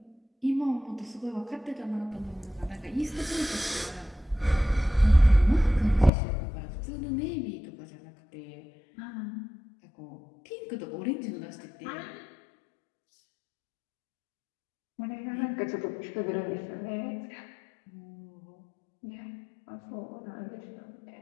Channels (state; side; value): drops out; right; at 6.1 s